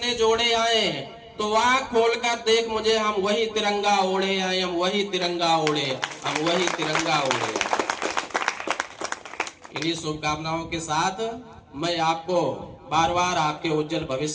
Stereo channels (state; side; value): identical; both; correlation 1.00